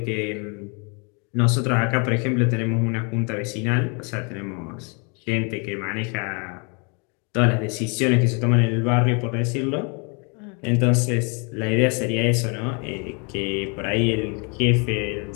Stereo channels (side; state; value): right; quieter; 34.6 dB